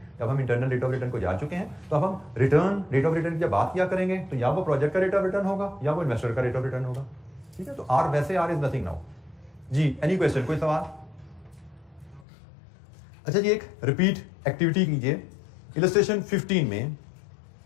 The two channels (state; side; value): drops out; right; at 12.2 s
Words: जब हम इंटरनल रेट ऑफ रिटर्न को जान चुके हैं, तो अब हम रिटर्न रेट ऑफ रिटर्न की जब बात किया करेंगे तो या वो प्रोजेक्ट का रेट ऑफ रिटर्न होगा या वो इन्वेस्टर का रेट ऑफ रिटर्न होगा। ठीक है, तो आर वैसे आर इज नथिंग नाउ। जी एनी क्वेश्चन, कोई सवाल? अच्छा जी, एक रिपीट एक्टिविटी कीजिए। इलस्ट्रेशन 15 में